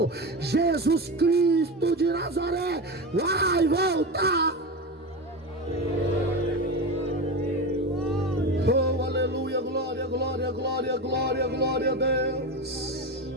Jesus Cristo de Nazaré vai voltar. Oh, aleluia, glória, glória, glória, glória, glória a Deus.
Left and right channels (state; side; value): normal; both; correlation 0.21